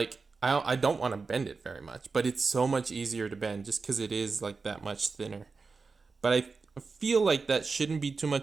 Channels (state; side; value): quieter; left; 4.4 dB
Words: I don't want to bend it very much, but it's so much easier to bend just because it is like that much thinner. But I feel like that shouldn't be too